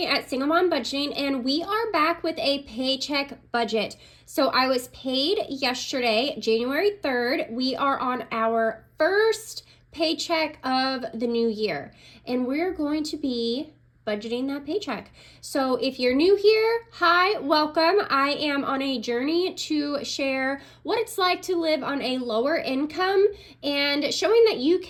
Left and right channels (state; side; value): identical; both; correlation 1.00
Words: at Single Mom Budgeting, and we are back with a paycheck budget. So I was paid yesterday, January 3rd. We are on our first paycheck of the new year, and we're going to be budgeting that paycheck. So if you're new here, hi, welcome. I am on a journey to share what it's like to live on a lower income and showing that you